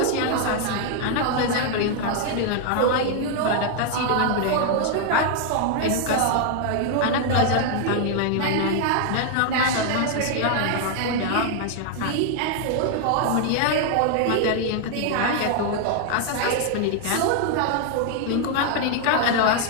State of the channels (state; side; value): different; both; correlation 0.00